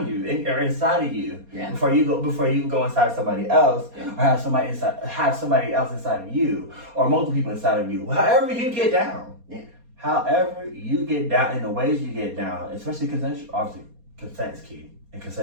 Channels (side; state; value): left; late; 4.2 ms